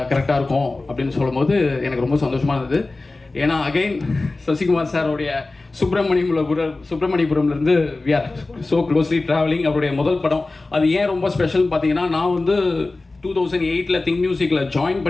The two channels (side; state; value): right; quieter; 3.3 dB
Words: கரெக்டாக இருக்கும் அப்படின்னு சொல்லும்போது எனக்கு ரொம்ப சந்தோஷமாக இருந்தது. ஏன்னா அகைன் சசிகுமார் சாரோடைய சுப்பிரமணியபுரம்லேருந்து we are so closely travelling. அவருடைய முதல் படம் அது ஏன் ரொம்ப ஸ்பெஷல்னு பார்த்தீங்கன்னா, நான் வந்து 2008 திங்க் மியூசிக்கில் ஜாயின்